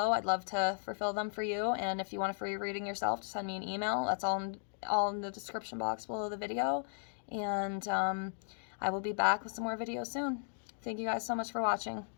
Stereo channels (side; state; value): right; silent; digital silence